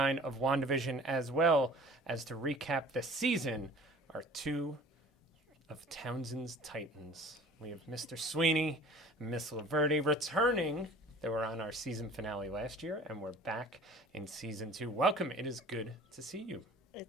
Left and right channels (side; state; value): both; normal; correlation 0.46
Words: of WandaVision, as well as to recap the season, are two of Townsend's Titans. We have Mr. Sweeney and Miss Laverde returning. They were on our season finale last year, and we're back in season 2. Welcome. It is good to see you.